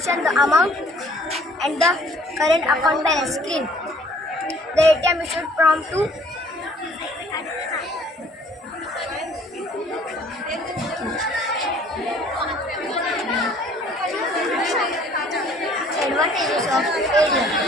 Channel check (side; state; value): both; normal; correlation 0.57